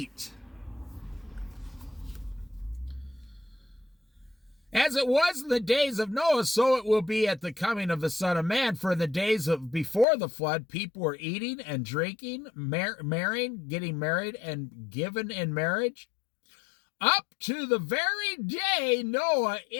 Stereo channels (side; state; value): right; drops out; at 10.1 s